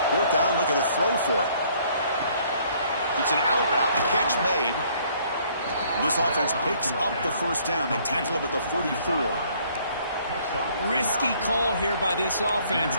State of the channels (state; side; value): inverted; both; correlation -0.62